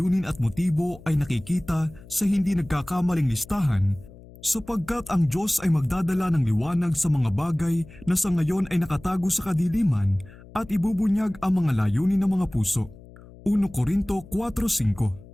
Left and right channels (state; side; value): noise; left; hum, 20 dB below the sound